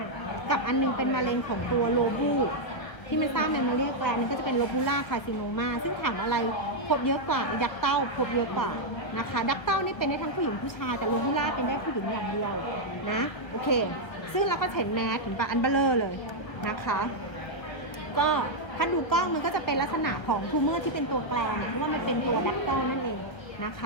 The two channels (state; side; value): late; right; 1.5 ms